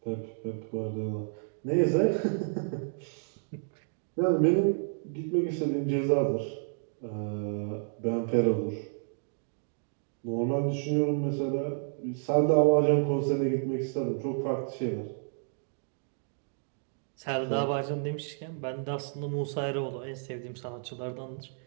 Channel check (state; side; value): silent; left; digital silence